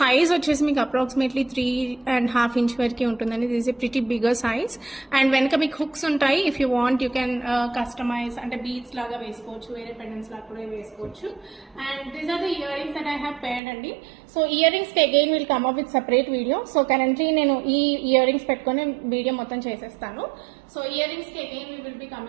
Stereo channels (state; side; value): drops out; left; at 13.6 s